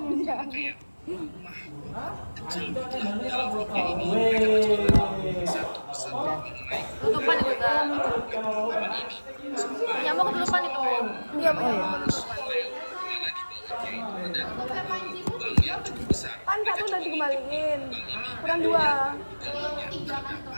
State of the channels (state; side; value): inverted; both; correlation -1.00